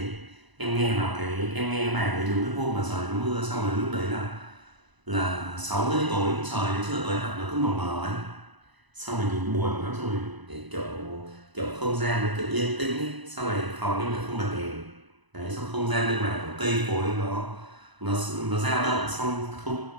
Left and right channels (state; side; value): late; left; 1.0 ms